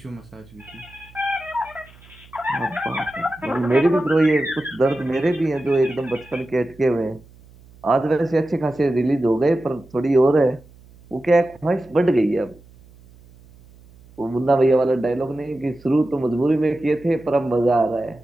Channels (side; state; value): right; noise; hum, 25 dB below the sound